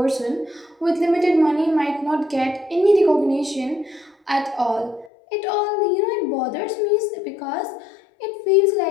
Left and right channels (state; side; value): drops out; right; at 5.1 s